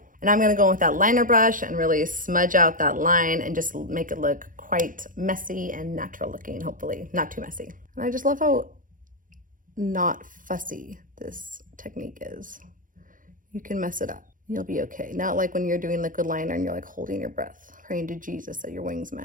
And I'm gonna go in with that liner brush and really smudge out that line and just make it look quite messy and natural looking, hopefully. Not too messy. And I just love how not fussy this technique is. you can mess it up. You'll be okay. Not like when you're doing liquid liner and you're like holding your breath, praying to Jesus that your wings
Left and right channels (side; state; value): left; late; 0.39 ms